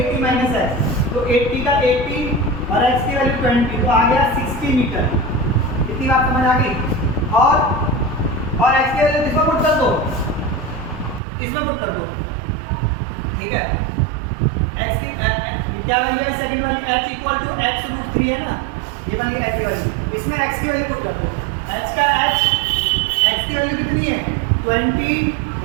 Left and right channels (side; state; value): left; drops out; at 11.2 s